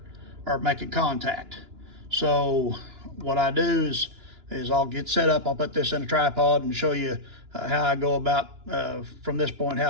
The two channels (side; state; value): left; late; 2.9 ms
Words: or making contact. So what I do is I'll get set up, I'll put this in a tripod and show you how I go about, from this point,